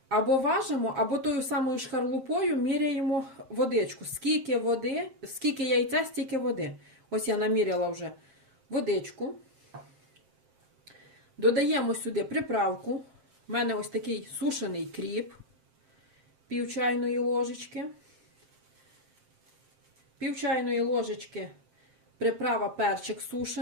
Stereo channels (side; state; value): left; late; 7.6 ms